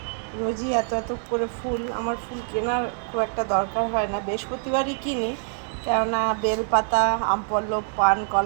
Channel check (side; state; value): left; silent; digital silence